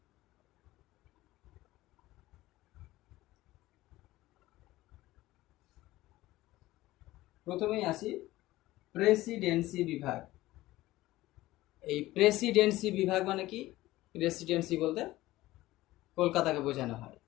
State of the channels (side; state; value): right; quieter; 17.2 dB